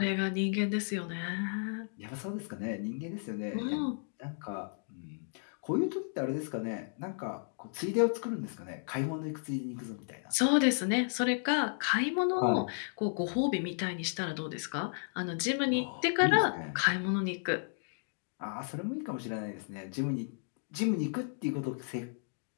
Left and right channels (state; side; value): silent; right; digital silence